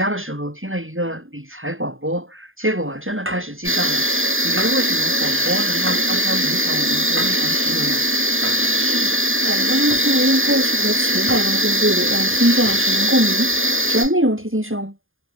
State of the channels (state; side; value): late; left; 0.59 ms